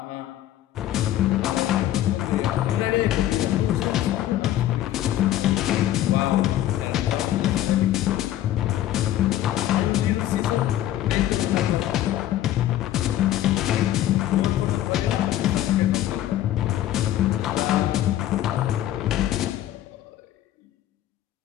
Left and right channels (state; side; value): quieter; right; 13.0 dB